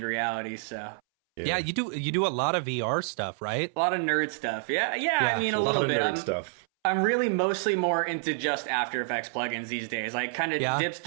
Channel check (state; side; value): silent; left; 59 dB below the other